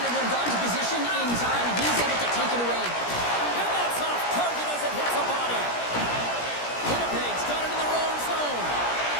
would have gone to position in time. He's able to take it away. And that's off target as it hits the body. Winnipeg's got it in their own zone.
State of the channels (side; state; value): right; late; 17 ms